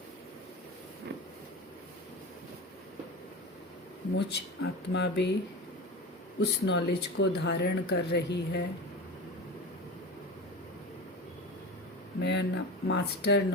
मुझ आत्मा भी उस नॉलेज को धारण कर रही है। मैं मास्टर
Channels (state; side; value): normal; both; correlation 0.28